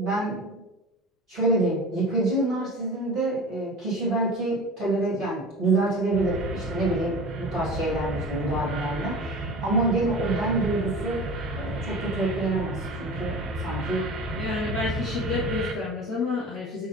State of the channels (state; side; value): normal; both; correlation 0.35